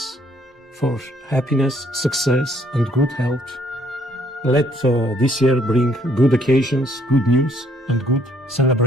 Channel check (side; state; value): both; normal; correlation 0.65